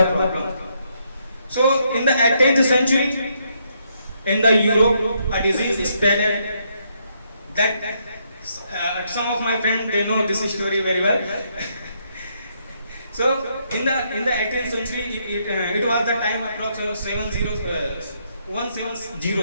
problem. So in the 18th century, in the Europe, a disease spread that some of my friends they know this story very well. So in the 18th century, it was the time approx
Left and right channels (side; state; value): both; inverted; correlation -0.75